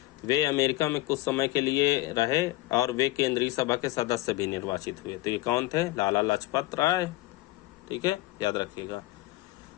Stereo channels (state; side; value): quieter; right; 18.9 dB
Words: वे अमेरिका में कुछ समय के लिए रहे और वे केंद्रीय सभा के सदस्य भी निर्वाचित हुए। तो ये कौन थे? लाला लाजपत राय, ठीक है, याद रखिएगा।